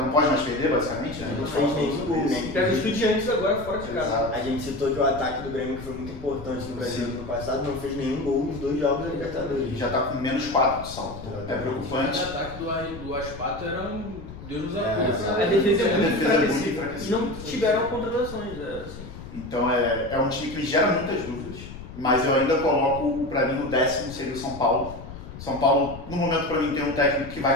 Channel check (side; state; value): left; noise; rumble, 13 dB below the sound